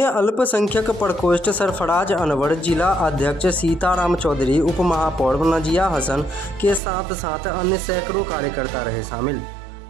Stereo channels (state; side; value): drops out; left; at 6.8 s